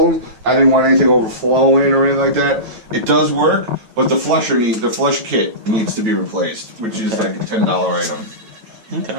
I didn't want anything overflowing or anything like that. It does work, but the flush kit needs to be replaced, which is like a $10 item.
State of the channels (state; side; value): late; left; 9.1 ms